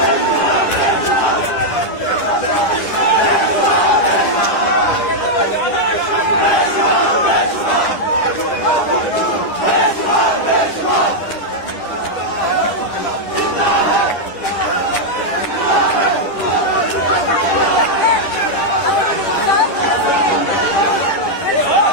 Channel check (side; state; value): right; late; 10 ms